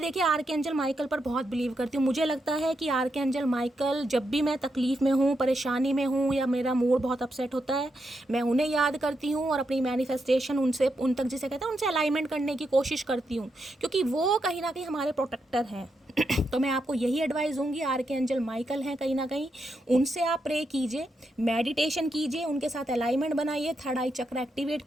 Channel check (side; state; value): both; normal; correlation 0.83